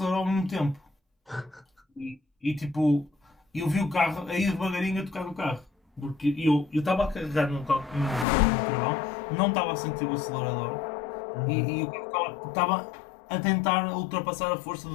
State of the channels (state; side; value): drops out; right; at 8.2 s